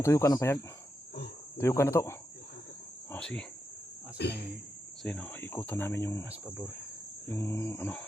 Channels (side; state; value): both; normal; correlation 0.86